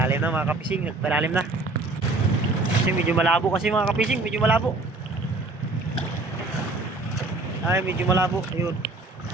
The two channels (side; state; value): left; quieter; 3.2 dB